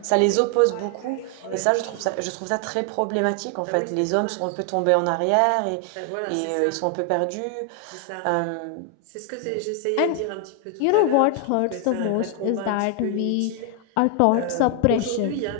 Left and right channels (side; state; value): both; different; correlation 0.00